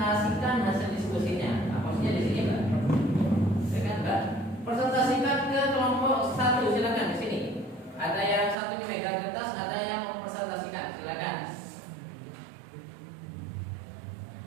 hasil diskusinya. Maksudnya di sini Mbak, silakan Mbak. Presentasikan ke kelompok 1 silakan di sini. Ada yang satu ini megang kertas, ada yang mempresentasikan. Silakan.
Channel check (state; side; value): drops out; left; at 8.6 s